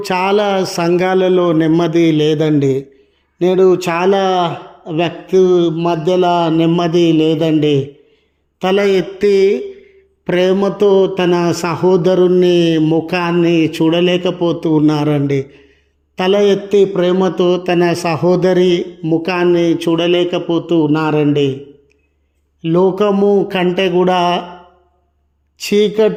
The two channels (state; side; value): identical; both; correlation 1.00